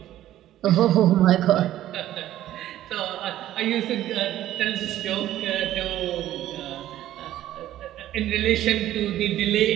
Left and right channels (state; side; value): quieter; left; 13.2 dB